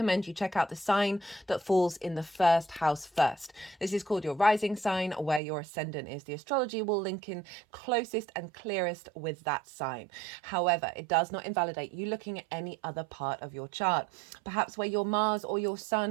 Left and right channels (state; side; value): drops out; left; at 5.4 s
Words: you check out the sign that falls in the first house first. This is called your rising sign, where your ascendant is. The astrology will link in closest and clearest with that sign. However, it does not invalidate you looking at any other part of your chart. Perhaps where your Mars or your